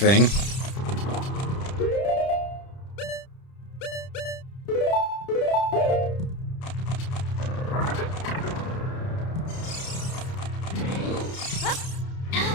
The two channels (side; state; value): right; late; 30 ms